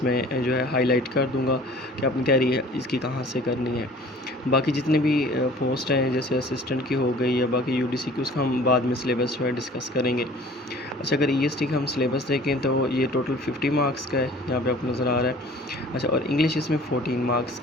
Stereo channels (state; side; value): normal; both; correlation 0.48